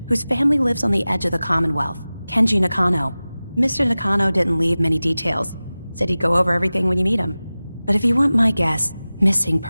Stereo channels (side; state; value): both; inverted; correlation -0.97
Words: whose family lives on the edge of the Commonwealth. Kenji Nakano. Mr. Nakano didn't leave many details. Said he'd go over everything when you meet him. But if you want my guess, missing